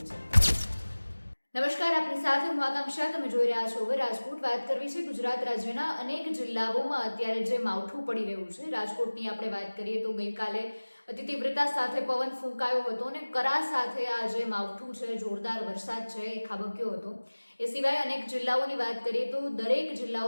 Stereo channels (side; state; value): both; inverted; correlation -1.00